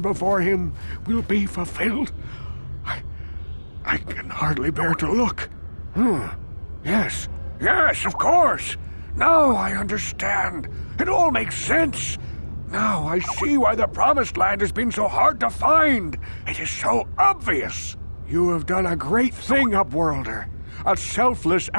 him will be fulfilled? I can hardly bear to look. Yes, of course. Now I understand. It all makes sense. Now I see why the Promised Land has been so hard to find. It is so obvious. You have done a great thing, Upworlder. A selfless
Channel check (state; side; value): inverted; both; correlation -1.00